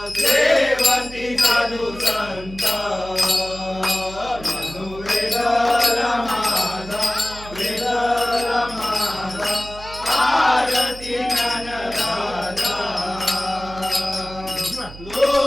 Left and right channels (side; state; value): right; noise; hum, 15 dB below the sound